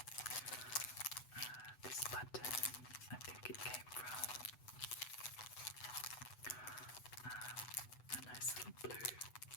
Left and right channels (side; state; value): right; late; 8.0 ms